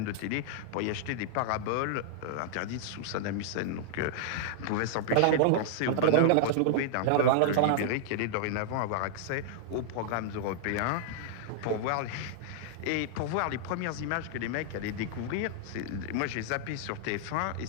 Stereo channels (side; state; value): both; different; correlation -0.01